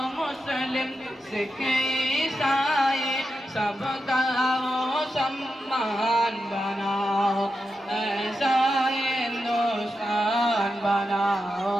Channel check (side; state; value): both; normal; correlation 0.88